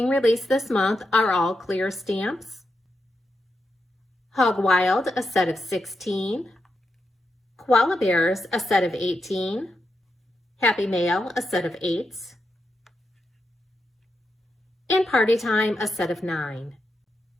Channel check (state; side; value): normal; both; correlation 0.85